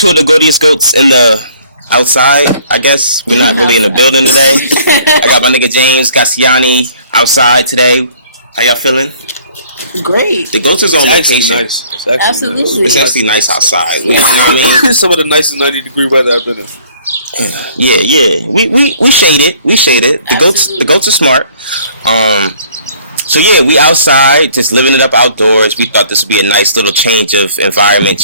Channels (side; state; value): both; inverted; correlation -0.57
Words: of the goatiest goats in the outside, I guess. We're not really in the building today. I got my nigga James Gassiani outside today. How y'all feeling? Great. The goats is on vacation. Nice. Absolutely. Nice. It's actually nice outside. You know what I mean? Some of the nicest 90-degree weather I've been in. Yeah. We shade it. The goats are smart. So yeah, we outside, just living it up outdoors. We thought this would be a nice little change of environment,